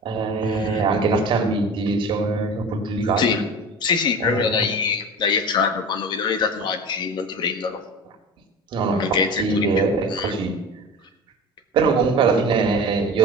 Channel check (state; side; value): normal; both; correlation 0.34